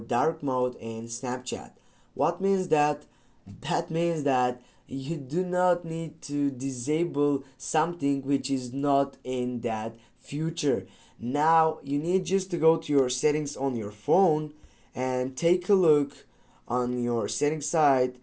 mode in Snapchat. What means that? That means that you do not need to disable something which is not in that feature. Now you need just to go to your settings on your phone and take a look on your settings side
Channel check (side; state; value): both; identical; correlation 1.00